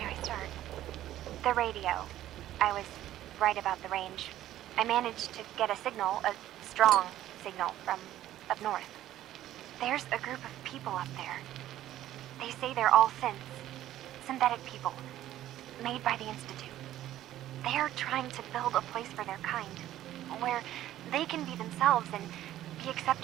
I start? The radio. I was right about the range. I managed to get a signal, a strong signal, from up north. There's a group of people up there. They say they're all synths. Synthetic people. Made by the Institute. They're trying to build a place for their kind. Where they can be themselves and be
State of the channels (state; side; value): quieter; left; 13.2 dB